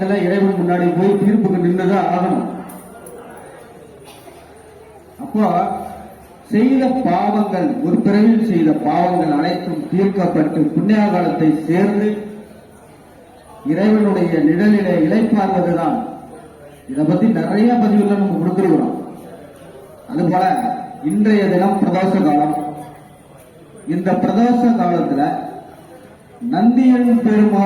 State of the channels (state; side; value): identical; both; correlation 1.00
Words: இறைவன் முன்னாடி போய் தீர்ப்புக்கு நின்றுதான் ஆகணும். அப்போ செய்த பாவங்கள், ஒரு பிறவில் செய்த பாவங்கள் அனைத்தும் தீர்க்கப்பட்டு புண்ணியகாலத்தை சேர்ந்து இறைவனுடைய நிழலிலே இளைப்பார்வதுதான். இதை பத்தி நிறைய பதிவுகள் நம்ம கொடுத்துருக்கிறோம். அதுபோல இன்றைய தினம் பிரதோஷ காலம். இந்த பிரதோஷ காலத்துல நந்தியன்